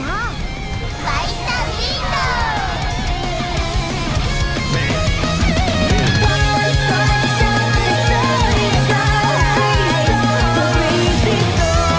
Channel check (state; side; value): identical; both; correlation 1.00